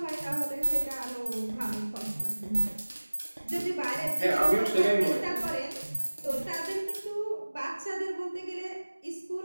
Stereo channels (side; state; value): both; inverted; correlation -1.00